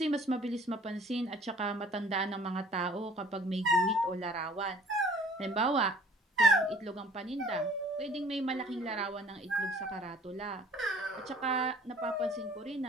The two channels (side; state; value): both; normal; correlation 0.52